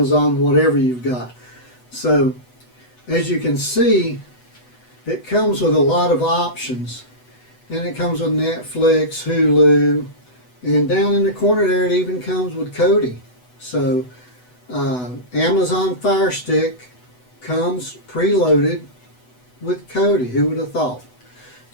whatever you've got. So as you can see, it comes with a lot of options, and it comes with Netflix, Hulu, and down in the corner there it even comes with Kodi. So Amazon Fire Stick comes preloaded with Kodi. Who would have thought?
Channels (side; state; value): right; late; 8.0 ms